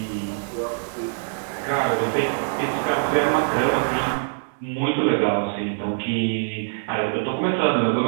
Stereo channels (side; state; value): left; silent; digital silence